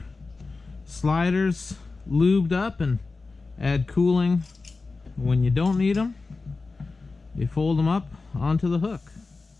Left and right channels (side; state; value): right; quieter; 3.9 dB